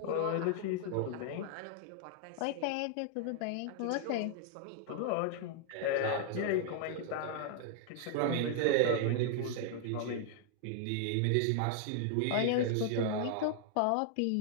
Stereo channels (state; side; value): different; both; correlation 0.00